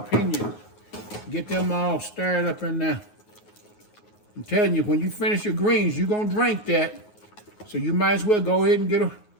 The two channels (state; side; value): late; right; 9.5 ms